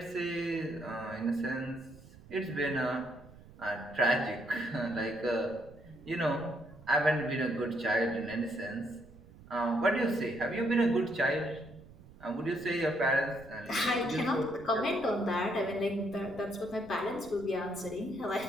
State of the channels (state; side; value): noise; right; rumble, 21 dB below the sound